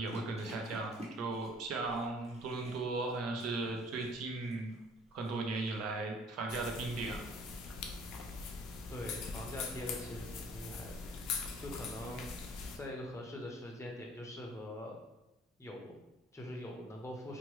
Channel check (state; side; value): normal; both; correlation 0.55